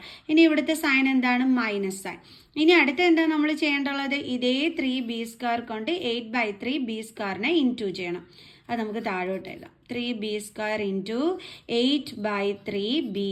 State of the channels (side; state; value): both; identical; correlation 1.00